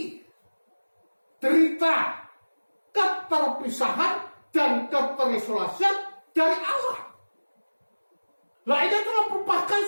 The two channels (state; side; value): inverted; both; correlation -1.00